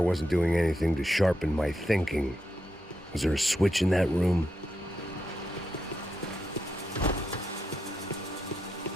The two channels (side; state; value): both; normal; correlation 0.84